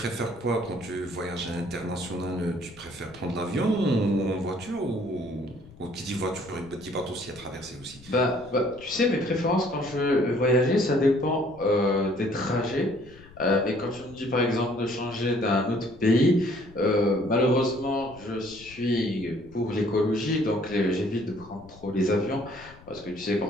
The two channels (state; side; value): noise; left; rumble, 22 dB below the sound